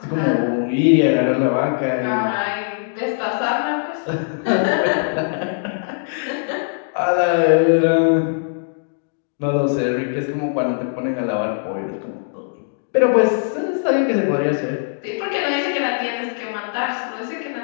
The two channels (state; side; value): silent; right; digital silence